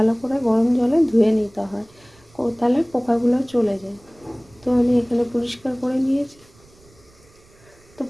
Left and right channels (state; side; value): noise; right; rumble, 28 dB below the sound